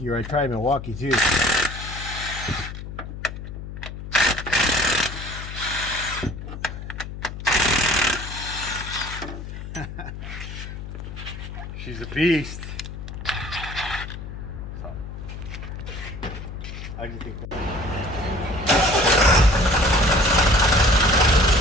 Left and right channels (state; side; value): noise; left; hum, 9 dB below the sound